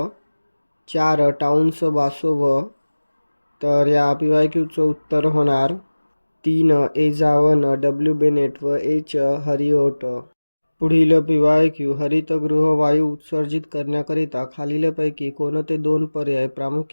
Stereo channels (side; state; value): both; inverted; correlation -1.00